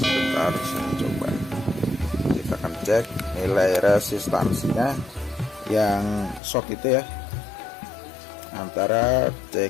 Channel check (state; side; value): drops out; right; at 6.4 s